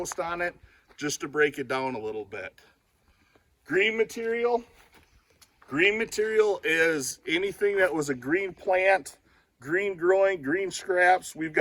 on it just to break it down a little bit. Green material is anything that was a green plant, green growing, green scraps. We've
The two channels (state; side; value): identical; both; correlation 1.00